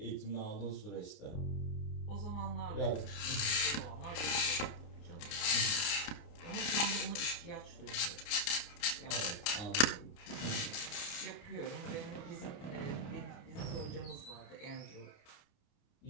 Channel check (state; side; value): late; right; 30 ms